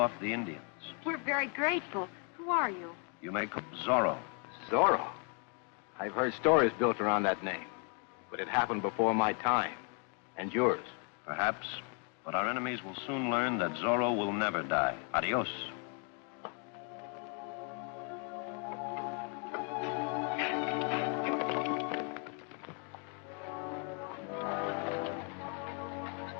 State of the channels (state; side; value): quieter; right; 38.6 dB